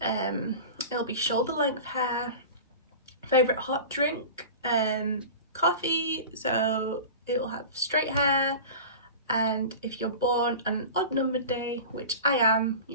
it'll be shoulder length hair. Favourite hot drink, coffee, so it'll have straight hair. And if you're born on an odd numbered day, which I am,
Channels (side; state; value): both; inverted; correlation -0.34